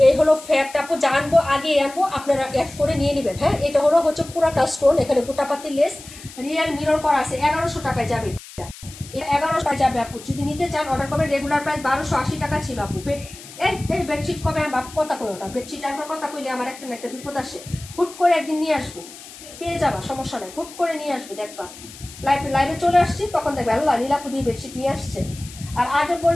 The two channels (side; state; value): left; noise; hiss, 17 dB below the sound